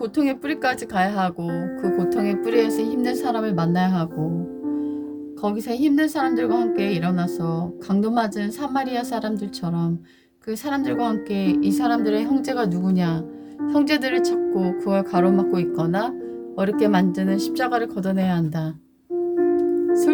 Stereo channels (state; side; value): identical; both; correlation 1.00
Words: 뿌리까지 가야 하고 그 고통의 뿌리에서 힘든 사람을 만나야 하고 거기서 힘든 사람들과 함께 일어나서 강도 맞은 사마리아 사람들처럼 그 사람들과 함께 이 사람들의 형제가 누구냐 형제들을 찾고 그걸 가로막고 있거나 어렵게 만드는 십자가를 걷어내야 한다.